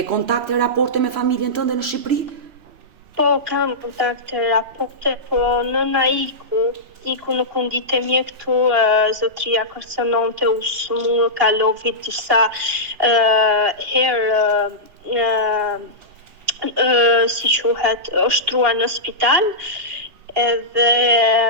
kontakte, raporte me familjen tënde në Shqipëri? Po, kam kontakte, raporte, po nëna iku nuk u ndite mirë këtu, zotria kërcënonte, u kalovi disa herë, si quhet, ushtruar në spital, edhe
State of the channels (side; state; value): left; late; 2.8 ms